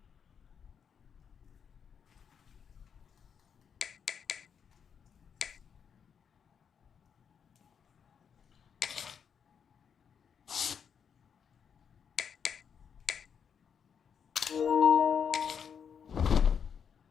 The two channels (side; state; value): right; quieter; 7.3 dB